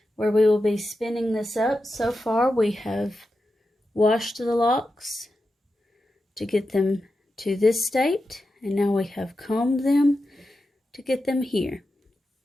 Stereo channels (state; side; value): normal; both; correlation 0.90